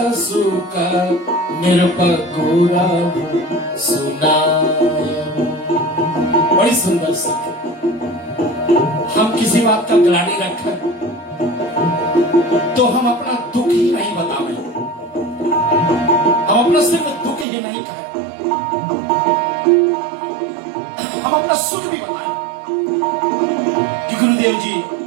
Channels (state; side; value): drops out; left; at 17.4 s